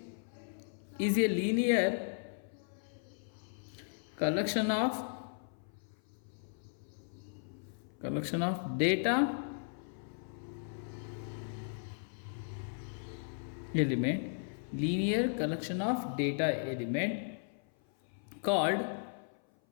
is a linear collection of data element, linear collection of data element called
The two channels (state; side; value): silent; right; 54 dB below the other